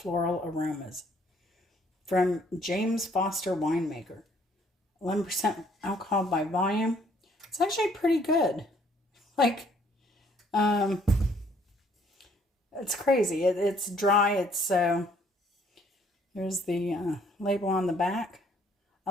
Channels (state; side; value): normal; both; correlation 0.63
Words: aromas. From James Foster Winemaker. 11% alcohol by volume. It's actually pretty good. Like, it's crazy. It's dry. It's There's the label on the back. I